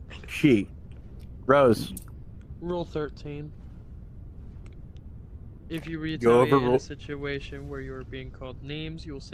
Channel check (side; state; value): both; identical; correlation 1.00